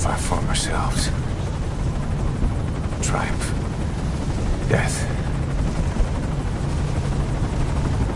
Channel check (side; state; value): both; identical; correlation 1.00